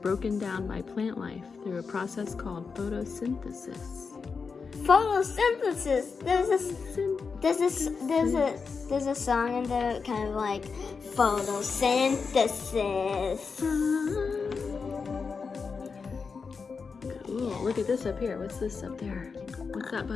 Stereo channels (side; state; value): right; quieter; 5.2 dB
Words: down by plant life through a process called photosynthesis. Photosynthesis. There's a song in there kind of like photosynthesis. Cool. Look at this up here. What's this up there? What's that